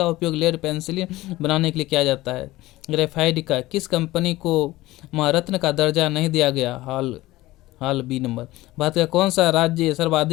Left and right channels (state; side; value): quieter; right; 18.0 dB